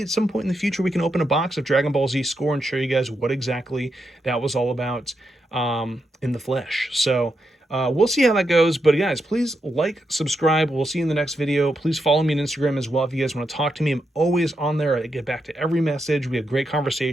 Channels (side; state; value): both; normal; correlation 0.84